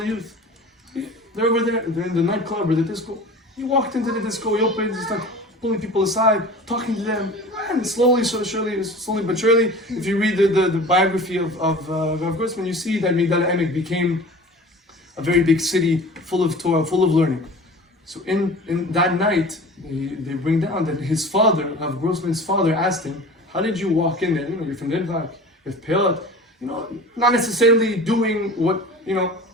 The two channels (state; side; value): normal; both; correlation 0.39